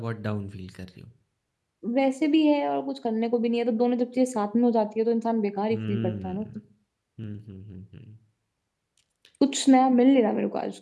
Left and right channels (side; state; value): both; identical; correlation 1.00